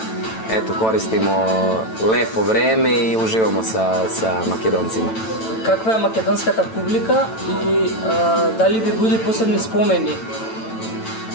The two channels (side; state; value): right; late; 9.0 ms